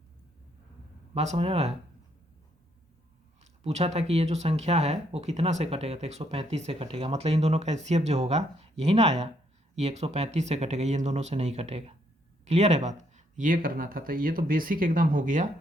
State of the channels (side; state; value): both; normal; correlation 0.72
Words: बात समझ आ रहा है? पूछा था कि ये जो संख्या है वो कितना से कटेगा, तो 135 से कटेगा, मतलब इन दोनों का एचसीएफ जो होगा यही ना आया, ये 135 से कटेगा, ये इन दोनों से नहीं कटेगा। क्लियर है बात? ये करना था, तो ये तो बेसिक एकदम हो गया।